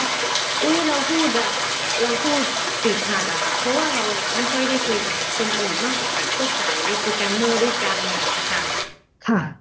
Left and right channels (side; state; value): both; identical; correlation 1.00